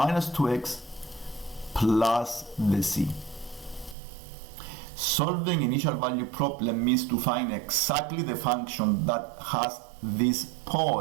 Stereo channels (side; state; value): left; drops out; at 4.0 s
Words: 2x plus the c. Solving initial value problem means to find exactly the function that has this